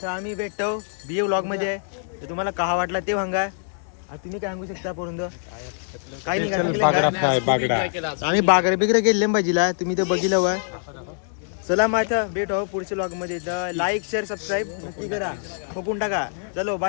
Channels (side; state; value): right; silent; 62 dB below the other